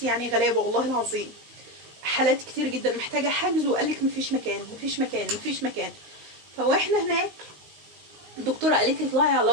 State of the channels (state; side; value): late; left; 19 ms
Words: يعني غلابه والله العظيم. حالات كتير جدا محتاجه حجز، وقال لك مفيش مكان مفيش مكان مفيش مكان. فاحنا هناك الدكتوره قالت لي اطلعي على